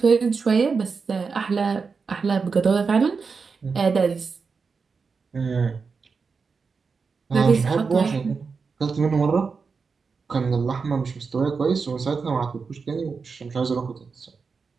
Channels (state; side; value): quieter; left; 5.1 dB